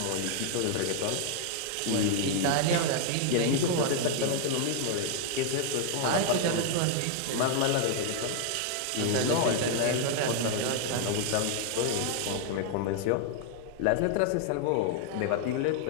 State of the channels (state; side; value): different; both; correlation 0.00